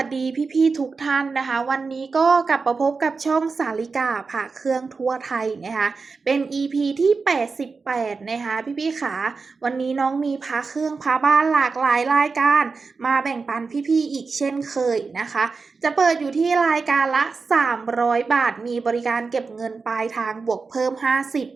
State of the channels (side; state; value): left; quieter; 4.5 dB